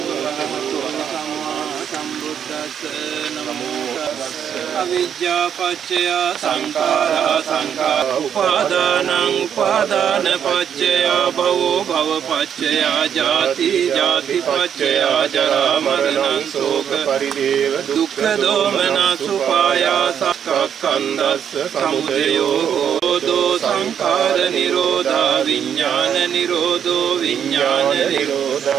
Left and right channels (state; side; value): quieter; left; 8.5 dB